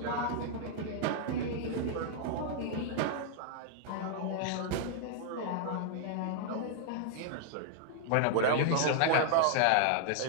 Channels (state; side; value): different; both; correlation -0.01